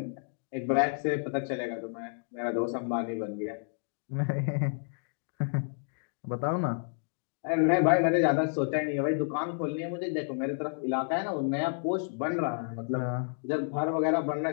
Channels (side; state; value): right; silent; digital silence